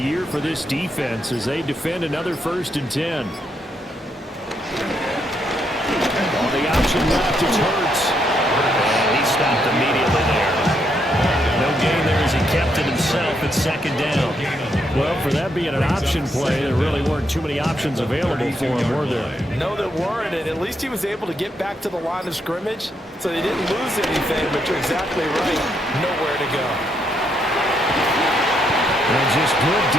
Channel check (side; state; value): both; normal; correlation 0.77